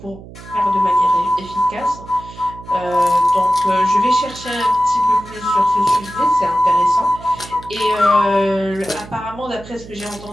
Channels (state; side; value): noise; right; hum, 17 dB below the sound